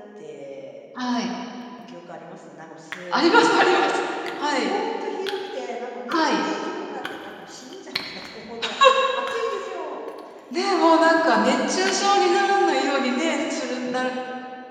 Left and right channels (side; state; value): both; identical; correlation 1.00